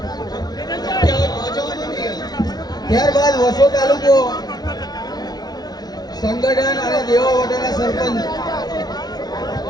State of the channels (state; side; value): late; right; 0.19 ms